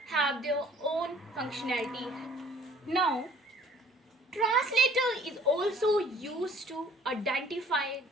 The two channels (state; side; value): normal; both; correlation 0.54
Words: have their own functionality. Now translator is also used to identify